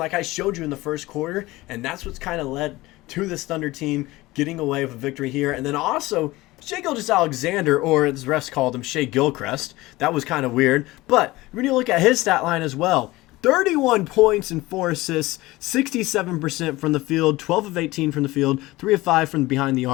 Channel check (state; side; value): quieter; right; 19.5 dB